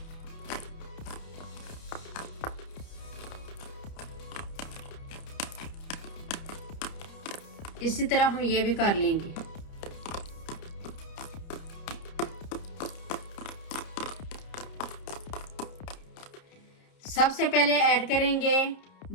इसी तरह हम ये भी कर लेंगे। सबसे पहले ऐड करेंगे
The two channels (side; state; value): right; late; 30 ms